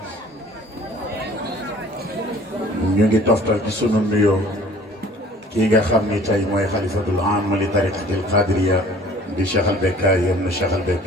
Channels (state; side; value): normal; both; correlation 0.51